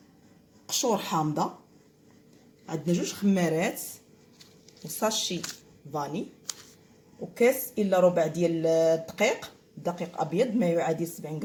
قشور حامضه، عندنا 2 خمارات وساشي فاني، وكاس الا ربع ديال الدقيق، دقيق ابيض ما يعادل 70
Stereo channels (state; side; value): identical; both; correlation 1.00